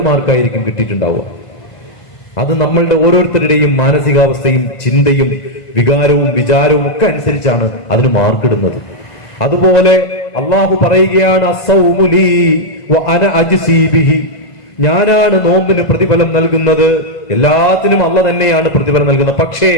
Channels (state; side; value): late; right; 2.0 ms